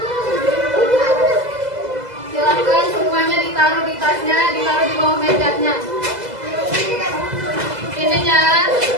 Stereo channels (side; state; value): left; late; 2.0 ms